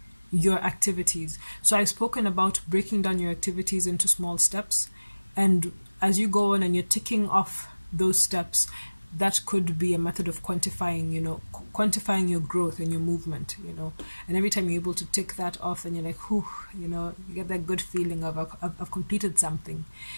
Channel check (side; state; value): both; inverted; correlation -1.00